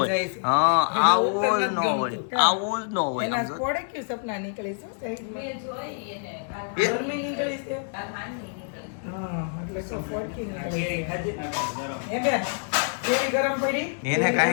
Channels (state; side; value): silent; right; 61 dB below the other